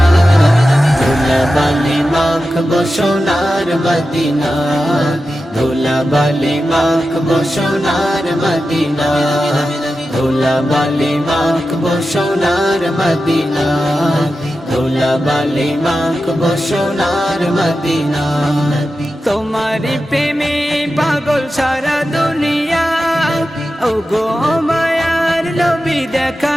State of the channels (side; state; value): both; normal; correlation 0.92